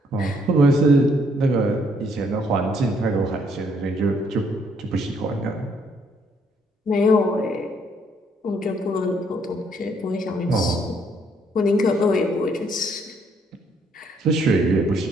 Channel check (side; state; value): both; normal; correlation 0.68